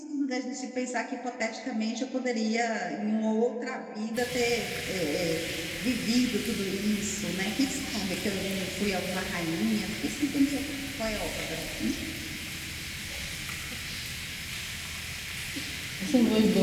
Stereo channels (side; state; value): both; identical; correlation 1.00